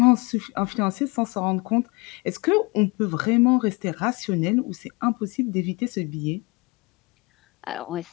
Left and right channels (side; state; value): right; quieter; 26.5 dB